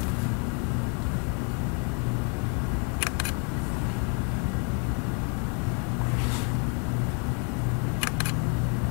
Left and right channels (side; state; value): right; quieter; 37.2 dB